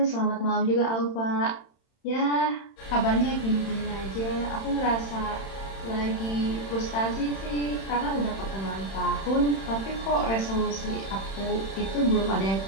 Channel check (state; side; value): late; right; 31 ms